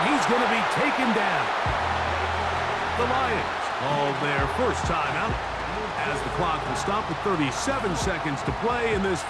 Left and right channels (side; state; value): both; identical; correlation 1.00